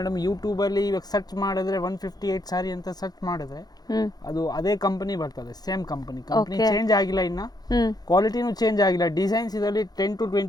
ಯೂಟ್ಯೂಬಲ್ಲಿ ಇವಾಗ ಸರ್ಚ್ ಮಾಡಿದ್ರೆ 158 ಸಾರಿ ಅಂತ ಸರ್ಚ್ ಮಾಡಿದ್ರೆ ಅದು ಅದೇ ಕಂಪನಿ ಬರ್ತದೆ, ಸೇಮ್ ಕಂಪನಿ ಚೇಂಜ್ ಆಗಿಲ್ಲ, ಇನ್ನ ಕ್ವಾಲಿಟಿನೂ ಚೇಂಜ್ ಆಗಿಲ್ಲ. ಡಿಸೈನ್ಸ್ ಇದರಲ್ಲಿ 10 to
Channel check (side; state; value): right; late; 0.19 ms